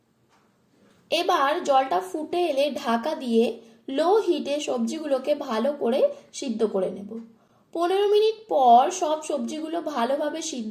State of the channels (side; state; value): both; identical; correlation 1.00